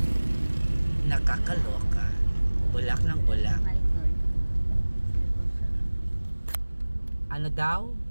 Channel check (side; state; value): both; inverted; correlation -1.00